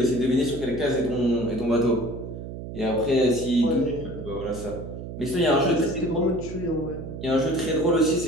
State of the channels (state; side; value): noise; right; hum, 9 dB below the sound